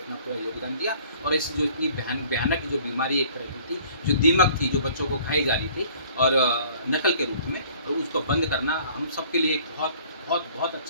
पूरा योगदान दिया, और इस जो इतनी भयानक जो बीमारी एक तरह की थी, जो दीमक थी, जो बच्चों को खाई जा रही थी और नकल के रूप में, तो उसको बंद करना हम सबके लिए एक बहुत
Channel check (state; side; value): inverted; both; correlation -0.54